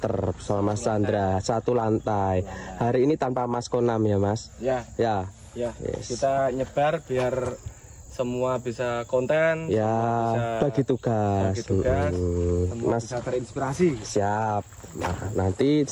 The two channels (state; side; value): identical; both; correlation 1.00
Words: bersama Mas Chandra, satu lantai. Hari ini tanpa Mas Konam ya Mas? Ya. Yes. Kita nyebar biar semua bisa konten, ya, bagi tugas, semua Mas bisa terinspirasi. Siap. Nah, nanti